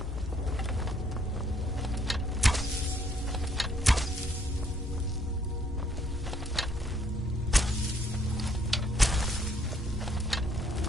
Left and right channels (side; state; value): both; normal; correlation 0.67